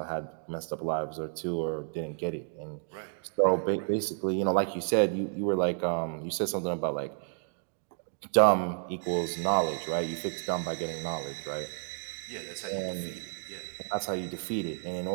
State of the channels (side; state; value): left; silent; digital silence